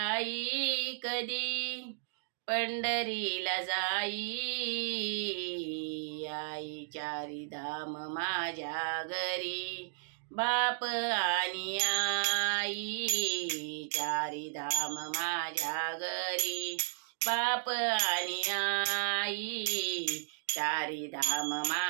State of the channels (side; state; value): left; silent; digital silence